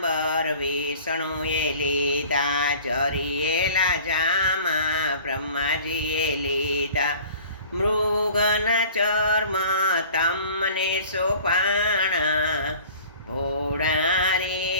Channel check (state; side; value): inverted; both; correlation -0.46